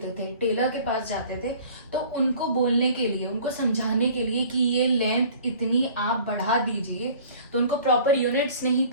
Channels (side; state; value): both; inverted; correlation -0.48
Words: थे, टेलर के पास जाते थे, तो उनको बोलने के लिए, उनको समझाने के लिए कि ये लेंथ इतनी आप बढ़ा दीजिए, तो उनको प्रॉपर यूनिट्स नहीं